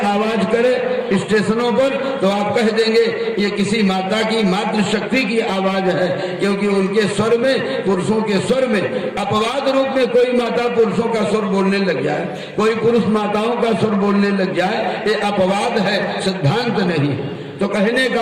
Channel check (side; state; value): both; identical; correlation 1.00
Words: आवाज करे स्टेशनों पर तो आप कह देंगे ये किसी माता की मातृशक्ति की आवाज है, क्योंकि उनके स्वर में, पुरुषों के स्वर में अपवाद रूप में कोई माता पुरुषों का स्वर बोलने लग जाए, कोई पुरुष माताओं का स्वर बोलने लग जाए, ये अपवाद है, सिद्धांत नहीं। तो कहने का